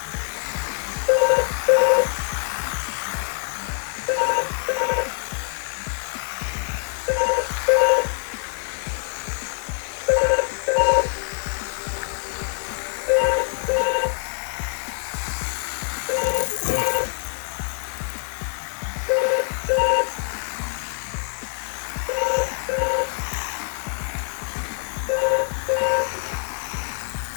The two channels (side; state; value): right; silent; 62 dB below the other